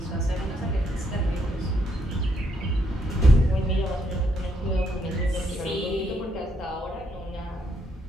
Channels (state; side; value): normal; both; correlation 0.75